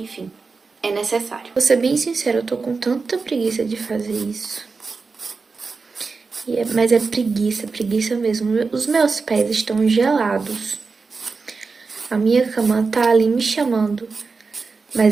é necessário. Vou ser bem sincera, eu tô com tanta preguiça de fazer isso. Mas é preguiça mesmo. Os meus pés estão gelados. A minha cama tá ali me chamando.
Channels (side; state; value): left; quieter; 4.5 dB